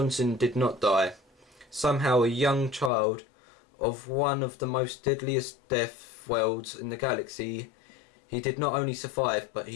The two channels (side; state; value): right; drops out; at 2.9 s